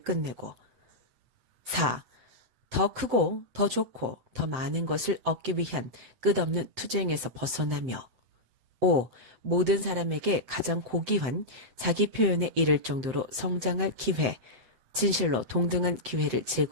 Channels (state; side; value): late; left; 7.7 ms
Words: 4. 더 크고 더 좋고 더 많은 것을 얻기 위한 끝없는 투쟁에서 벗어나며 5. 모든 사람에게 가장 고귀한 자기 표현에 이를 정도로 성장할 기회, 진실로 동등한 기회를